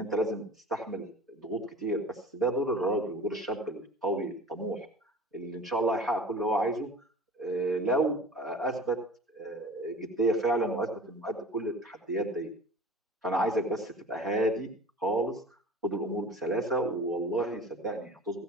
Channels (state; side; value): normal; both; correlation 0.41